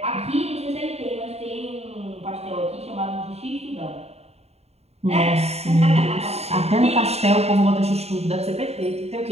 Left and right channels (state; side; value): late; left; 0.30 ms